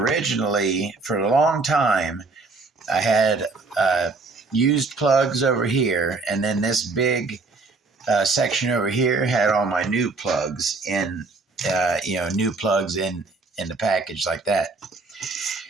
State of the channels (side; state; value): left; quieter; 3.8 dB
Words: for a long time, I had used plugs over here, and then this big section over here had all my new plugs in, new plugs in the package like that.